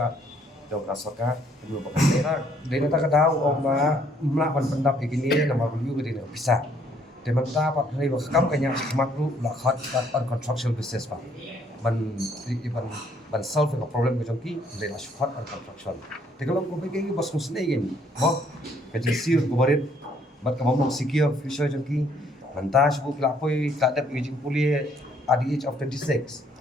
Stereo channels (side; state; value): both; normal; correlation 0.65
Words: jauh kasaka belum pakai daerah dari neta kadau oma melakukan pendap begini nama beliau dari bisa Teman dapat hari kam kanya makru la khat on construction business pa. Ban solve the problem ko jongki le la shot on construction. Te kalau ko bagi bos musne gen. Mo ka jisir ko barit bat ka mong secure future jongki. Mantas bu lapoi tak ada aging puli at the age of 26.